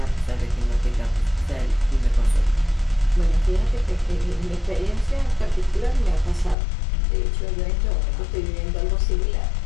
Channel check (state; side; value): drops out; right; at 6.6 s